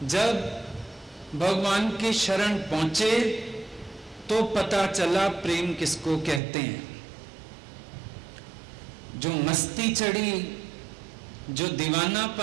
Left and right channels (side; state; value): left; drops out; at 6.4 s